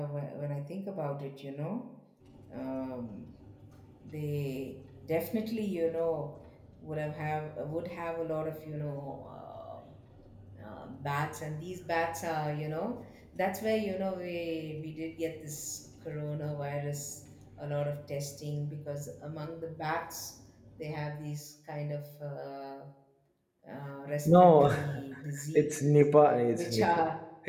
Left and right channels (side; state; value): both; identical; correlation 1.00